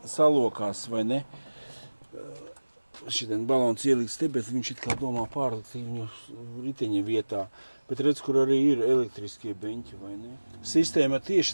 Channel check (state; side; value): inverted; both; correlation -1.00